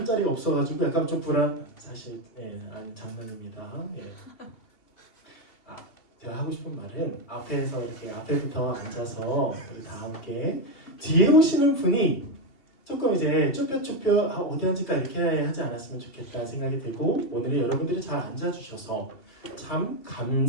자리가 없어가지고 약간 좀 사실 아니 장난입니다. 제가 하고 싶은 말은 앞에서 이렇게 앞에부터 앉아서 우리 다 함께 뒤에 오시는 분이 조금 이제 쭈뼛쭈뼛 어디 앉을까 이렇게 하지 않았으면 좋겠다 생각이 들고 오늘은 여러분들이 잘 앉아주셔서 참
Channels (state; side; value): late; right; 2.8 ms